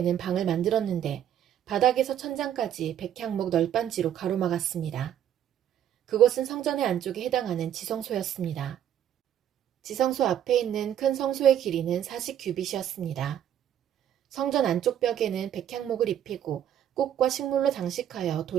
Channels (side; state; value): left; quieter; 10.3 dB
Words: 방을 만들었는데 바닥에서 천장까지 백향목 널빤지로 가로막았습니다. 그곳은 성전의 안쪽에 해당하는 지성소였습니다. 지성소 앞에 있는 큰 성소의 길이는 40규빗이었습니다. 성전 안쪽 벽에는 백향목을 입히고 꽃과 식물로 장식하여